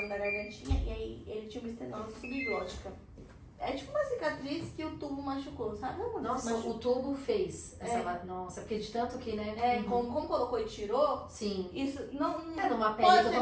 da gargantinha e aí ele tinha uma estenose subglótica. É tipo uma cicatriz que o tubo machucou, sabe? Nossa, o tubo fez essa. Nossa, porque de tanto que, né? Como colocou e tirou, sim. Isso não. Numa pele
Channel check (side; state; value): both; identical; correlation 1.00